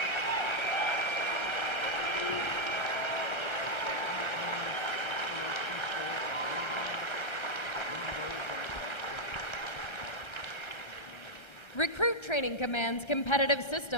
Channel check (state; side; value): late; right; 1.3 ms